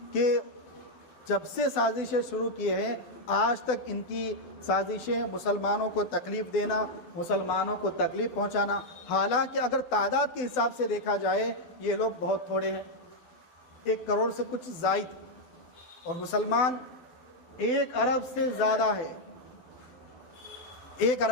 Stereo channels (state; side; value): late; right; 12 ms